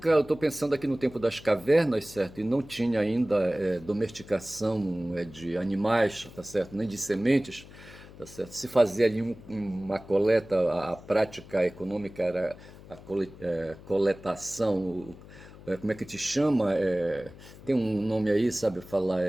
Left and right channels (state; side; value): noise; left; hum, 19 dB below the sound